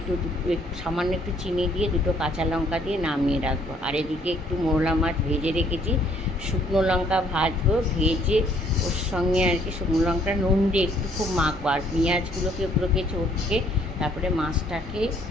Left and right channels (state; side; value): normal; both; correlation 0.64